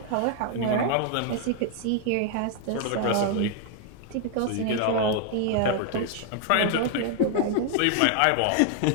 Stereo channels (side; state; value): both; different; correlation 0.00